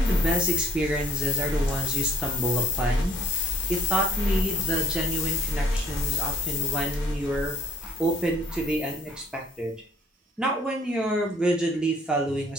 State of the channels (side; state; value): both; normal; correlation 0.56